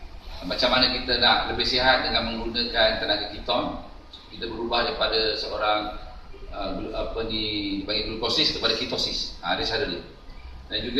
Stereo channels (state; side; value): identical; both; correlation 1.00